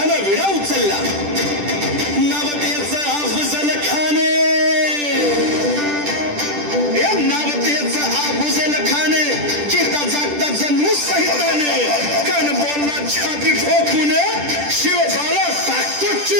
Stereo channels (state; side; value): late; left; 10 ms